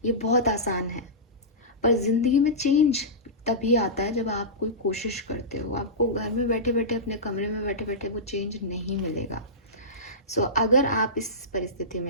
ये बहुत आसान है। पर जिंदगी में चेंज तभी आता है जब आप कोई कोशिश करते हो। आपको घर में बैठे बैठे, अपने कमरे में बैठे बैठे वो चेंज नहीं मिलेगा। सो अगर आप इस परिस्थिति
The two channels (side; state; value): both; normal; correlation -0.17